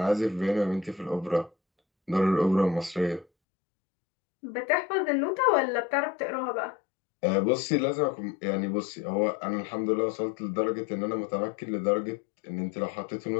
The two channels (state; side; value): drops out; right; at 3.2 s